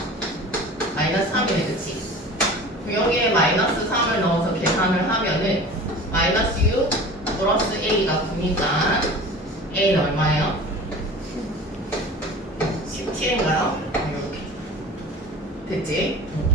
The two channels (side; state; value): both; normal; correlation 0.39